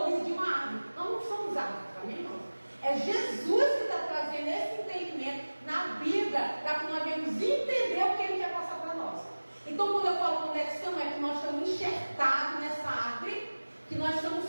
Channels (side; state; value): both; inverted; correlation -1.00